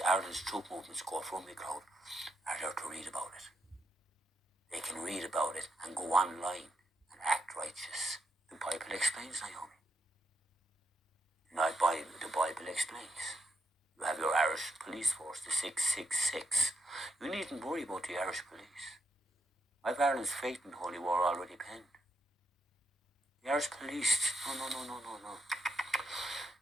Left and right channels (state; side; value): normal; both; correlation 0.79